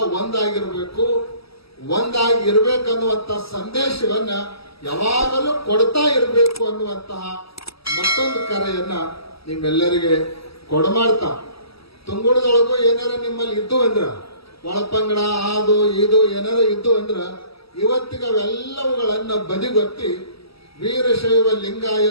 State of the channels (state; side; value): late; right; 0.76 ms